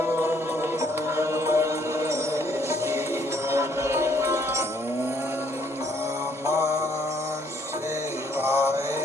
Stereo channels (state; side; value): normal; both; correlation 0.66